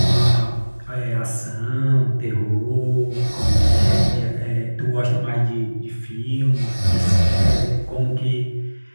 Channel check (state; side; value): inverted; both; correlation -1.00